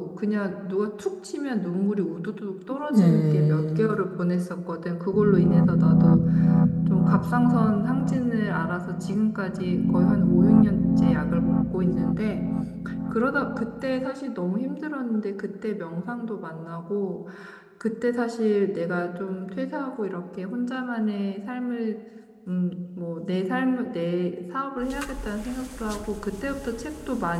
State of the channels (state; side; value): identical; both; correlation 1.00